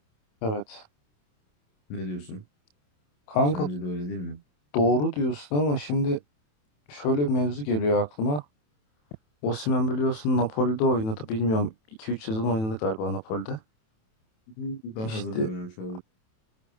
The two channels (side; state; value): right; late; 27 ms